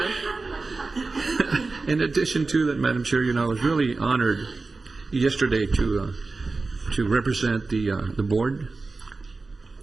In addition to that, Madam Chair, I was really honored yesterday to represent the board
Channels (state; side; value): quieter; left; 3.8 dB